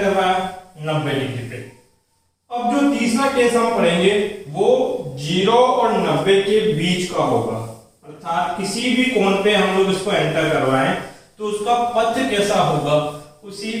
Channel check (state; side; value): identical; both; correlation 1.00